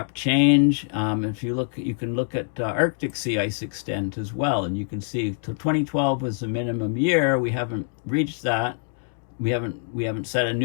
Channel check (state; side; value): silent; right; digital silence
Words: change. If you look, you can look at Arctic sea ice extent as well, and you can see. So 2012 was the minimum year. We haven't reached that. We haven't set a